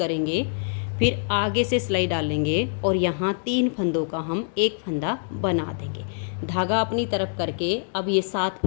फिर आगे से सिलाई डालेंगे और यहाँ 3 फंदों का हम एक फंदा बना देंगे। धागा अपनी तरफ करके अब ये 7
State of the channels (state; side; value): silent; right; digital silence